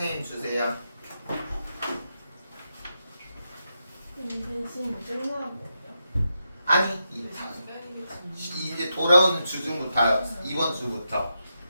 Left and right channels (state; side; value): inverted; both; correlation -0.86